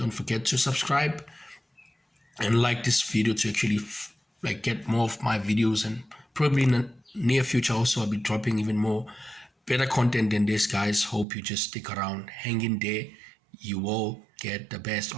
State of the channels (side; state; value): left; drops out; at 11.2 s